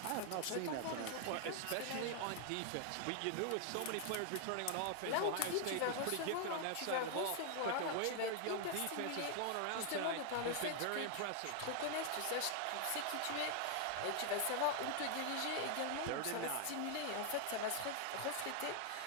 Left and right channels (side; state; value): both; different; correlation 0.00